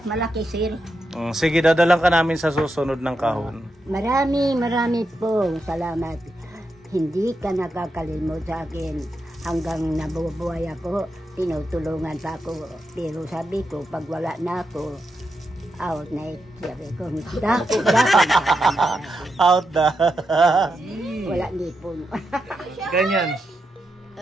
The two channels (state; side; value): normal; both; correlation 0.85